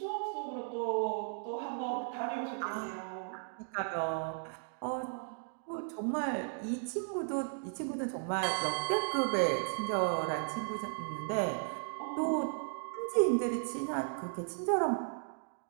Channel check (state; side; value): silent; left; digital silence